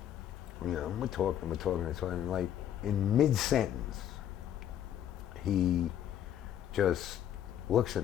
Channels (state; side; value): quieter; right; 10.5 dB